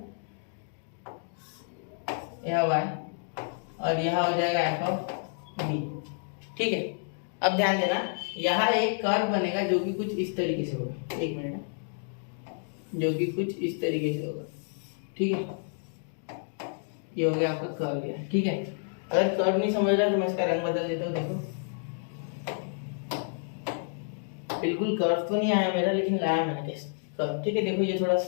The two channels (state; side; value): silent; right; digital silence